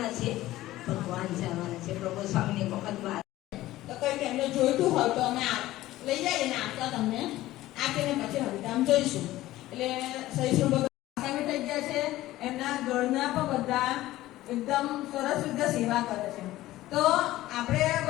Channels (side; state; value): right; quieter; 16.0 dB